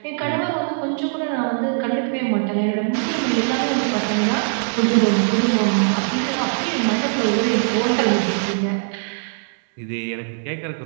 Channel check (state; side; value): silent; left; digital silence